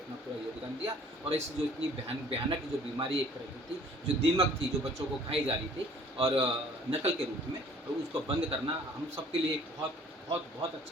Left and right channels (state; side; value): normal; both; correlation 0.54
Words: पूरा योगदान दिया, और इस जो इतनी भयानक जो बीमारी एक तरह की थी, जो दीमक थी, जो बच्चों को खाई जा रही थी और नकल के रूप में, तो उसको बंद करना हम सबके लिए एक बहुत